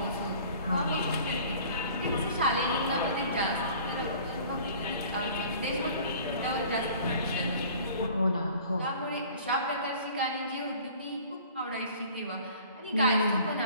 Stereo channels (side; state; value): both; inverted; correlation -0.49